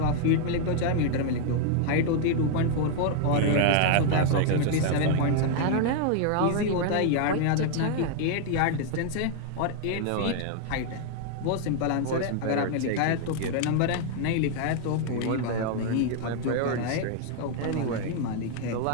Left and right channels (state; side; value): different; both; correlation 0.00